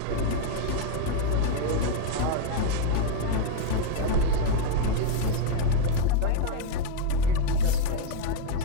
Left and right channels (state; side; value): different; both; correlation 0.00